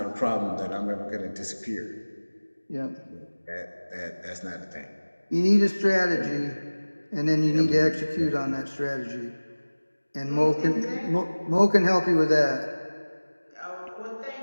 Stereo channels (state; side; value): inverted; both; correlation -1.00